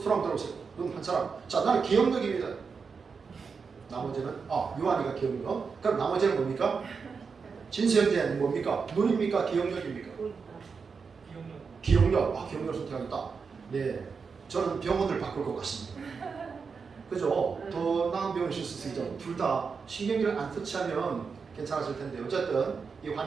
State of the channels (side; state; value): left; quieter; 5.4 dB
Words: 들어보세요. 눈 한 사람. 자 나는 기억력입니다. 나머지는 요한이가 기억력. 그럼 나머지는 뭡니까? 진수현재는 뭡니까? 눈입니까? 기억력입니까? 기억력. 기억력을 선택하겠다. 네, 저는 병원을 바꿀 것 같습니다. 그죠? 더 나은 병원을 쓸 수 있죠. 둘 다 신경기를 안 터치하면 괜찮았을 텐데 어쨌든 이